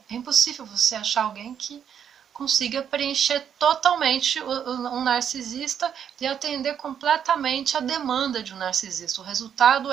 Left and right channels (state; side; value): quieter; left; 8.5 dB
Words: impossível você achar alguém que consiga preencher totalmente um narcisista e atender completamente a demanda de um narcisista. O resultado